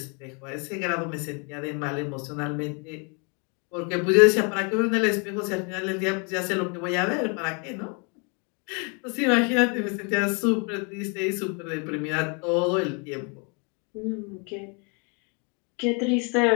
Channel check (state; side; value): quieter; right; 34.8 dB